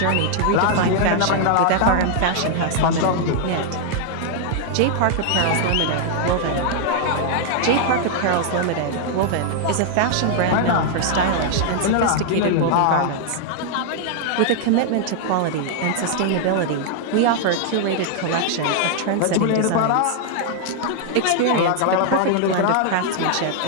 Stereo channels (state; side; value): different; both; correlation 0.00